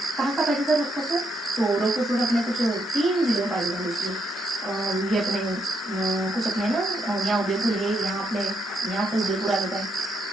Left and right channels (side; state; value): both; normal; correlation 0.77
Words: कहाँ का पाए जाता है रोक फॉस्फोट, तो रोक फॉस्फोट अपने कुछ 3 जिलों में पाए जाते हैं। इसलिए ये अपने कुछ अपने ना यहाँ उदयपुर है, यहाँ अपने यहाँ से उदयपुर आ जाता है,